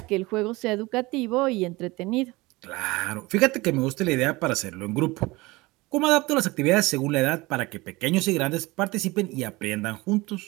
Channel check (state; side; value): quieter; left; 22.0 dB